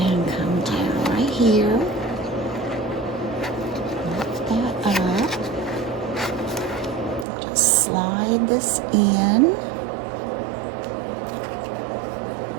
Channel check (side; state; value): left; drops out; at 7.2 s